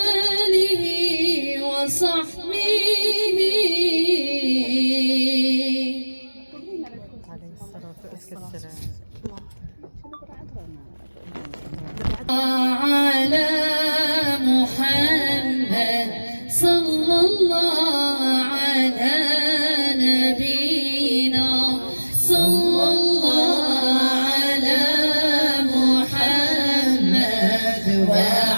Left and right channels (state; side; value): inverted; both; correlation -1.00